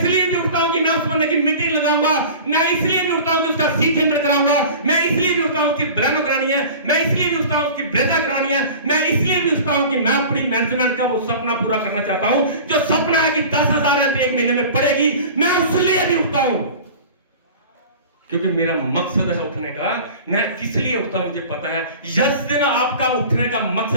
भी उठता हूं कि मैं उस बंदे की मीटिंग लगाऊंगा। मैं इसलिए भी उठता हूं कि उसका सी टेंडर कराऊंगा। मैं इसलिए भी उठता हूं कि ब्लैनो करानी है। मैं इसलिए भी उठता हूं कि ब्रेजा करानी है। मैं इसलिए भी उठता हूं कि मैं अपनी मैनेजमेंट का वो सपना पूरा करना चाहता हूं, जो सपना है कि 10,000 रन एक महीने में पड़ेगी। मैं उसलिए भी उठता हूं क्योंकि मेरा मकसद है उठने का। मैं किस लिए उठता हूं मुझे पता है। जिस दिन आपका उठने का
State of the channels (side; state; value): both; inverted; correlation -0.39